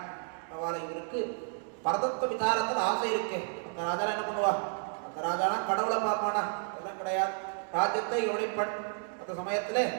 அவளை இவருக்கு பரதத்துவ விசாரத்தில் ஆசை இருக்கு. அந்த ராஜா என்ன பண்ணுவா? அந்த ராஜானா கடவுளை பார்ப்பானா? அதெல்லாம் கிடையாது. ராஜ்யத்தை யோனிப்பன். அந்த சமயத்துல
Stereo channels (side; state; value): left; silent; 57 dB below the other